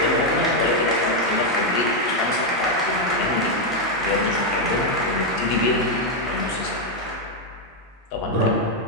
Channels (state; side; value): normal; both; correlation 0.02